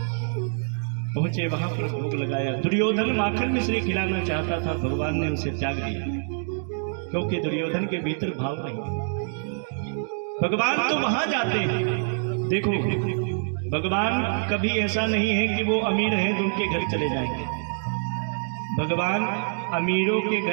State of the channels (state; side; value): silent; left; 61 dB below the other